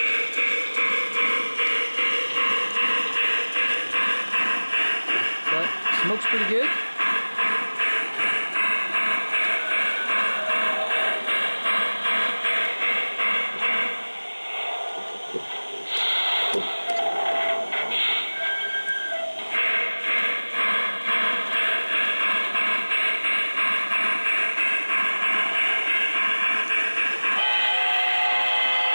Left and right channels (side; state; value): both; inverted; correlation -1.00